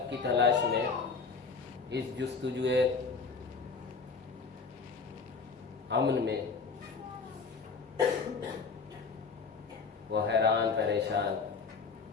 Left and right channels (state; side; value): quieter; right; 5.0 dB